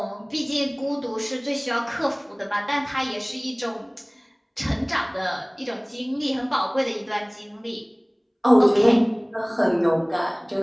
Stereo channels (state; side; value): identical; both; correlation 1.00